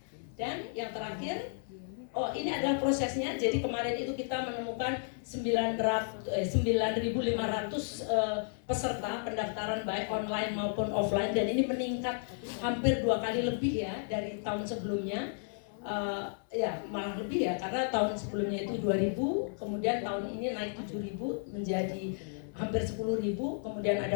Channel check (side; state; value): right; silent; digital silence